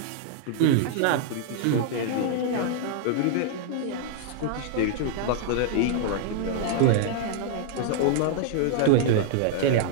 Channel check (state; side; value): different; both; correlation -0.01